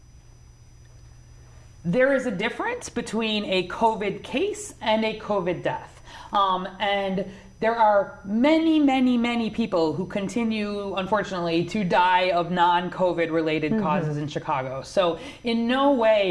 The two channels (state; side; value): identical; both; correlation 1.00